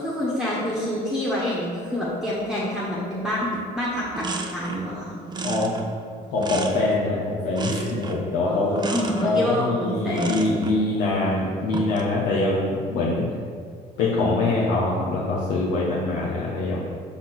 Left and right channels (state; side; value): normal; both; correlation 0.50